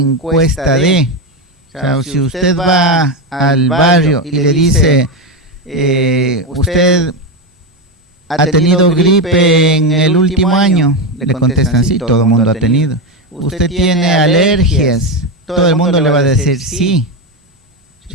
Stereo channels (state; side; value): normal; both; correlation 0.12